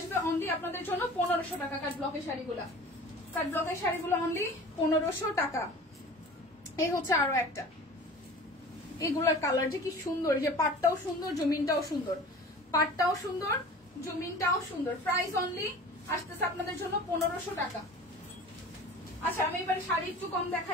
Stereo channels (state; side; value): normal; both; correlation 0.41